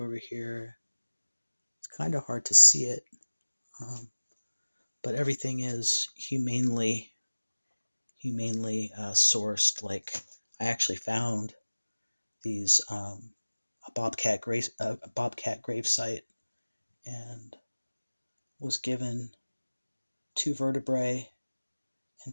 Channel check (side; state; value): both; inverted; correlation -1.00